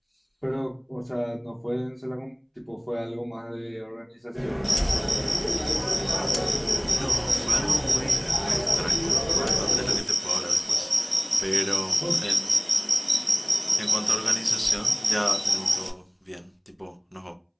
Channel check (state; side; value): identical; both; correlation 1.00